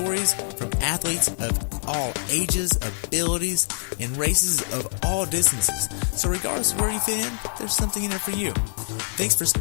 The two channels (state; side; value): silent; right; digital silence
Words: from athletes of all ages, abilities, and races of all distances. So regardless of where you fit in, there's something in there for you. Thanks for